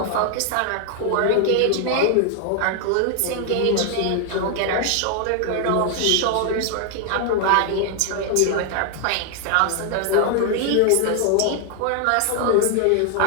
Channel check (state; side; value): different; both; correlation 0.00